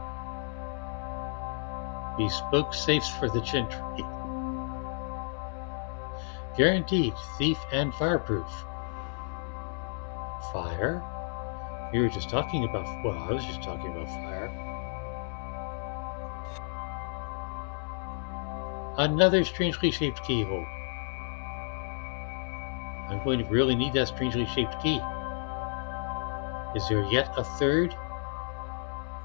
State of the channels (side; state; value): right; silent; 57 dB below the other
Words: Bespoke safes for the gentry. Guaranteed thief and fireproof. Fire? We were just talking about, well, I was just talking about fire. Another strangely shaped keyhole. I'm going to really need that strangely shaped key. Is there yet a third